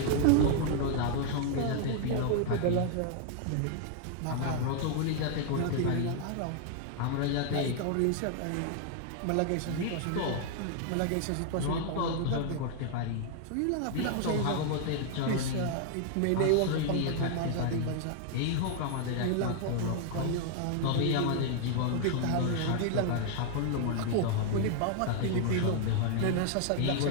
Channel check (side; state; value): both; different; correlation 0.00